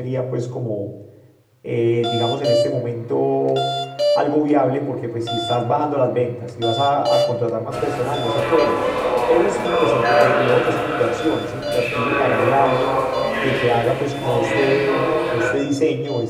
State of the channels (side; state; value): both; identical; correlation 1.00